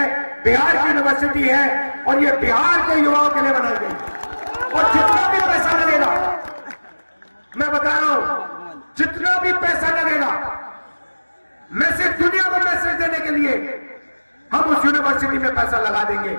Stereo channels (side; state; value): both; inverted; correlation -1.00